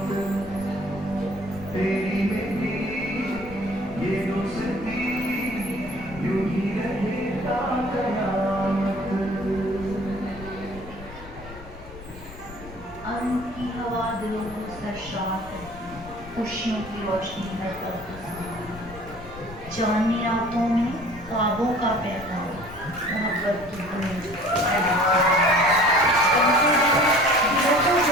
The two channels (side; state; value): left; noise; rumble, 16 dB below the sound